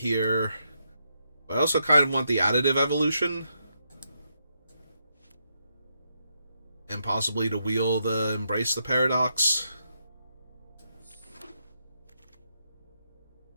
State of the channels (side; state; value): both; inverted; correlation -0.80